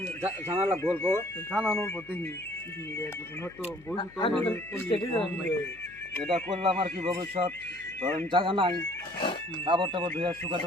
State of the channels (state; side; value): noise; left; hum, 26 dB below the sound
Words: জানালা গল্প জানানোর পর দেখি কিছু মিনিট হয়তো বই এটা করলাম আর কি ভবিষ্যৎ ধরেন জায়গা নাই, কাপড় টাপড় ধুয়ে শুকাতে